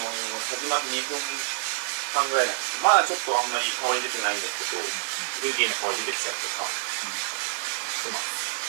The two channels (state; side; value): silent; left; digital silence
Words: まって2分間ぐらいなんですけど、まだちょっとあんまり香り出てないんですけど、フルーティーな香り出てきたりとかします。